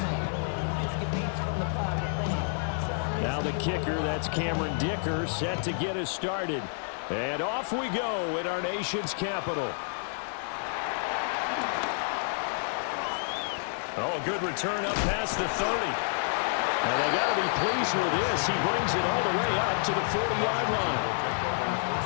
Now the kicker, that's Cameron Dicker, set to get us started. And off we go in our nation's capital. Oh, good return up past the 30. And they got to be pleased with this. He brings it all the way up to the 40-yard line.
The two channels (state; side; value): silent; right; 58 dB below the other